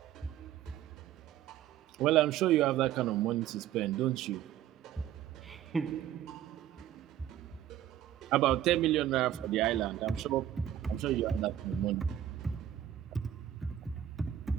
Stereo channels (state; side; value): quieter; left; 11.3 dB